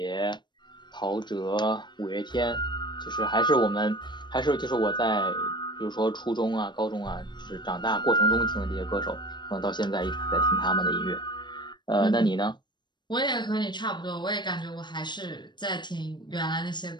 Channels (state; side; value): late; right; 0.22 ms